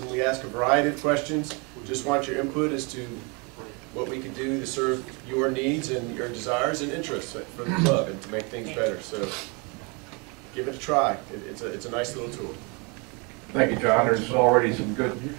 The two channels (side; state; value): left; quieter; 31.3 dB